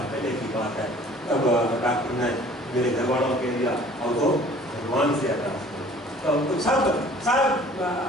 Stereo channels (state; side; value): normal; both; correlation 0.51